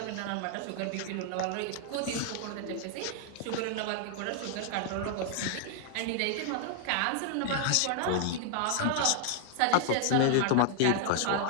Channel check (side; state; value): both; different; correlation 0.00